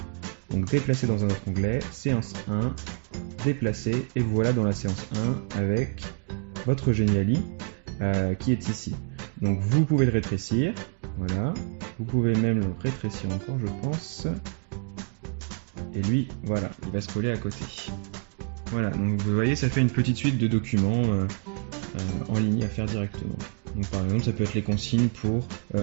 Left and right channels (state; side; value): quieter; left; 39.5 dB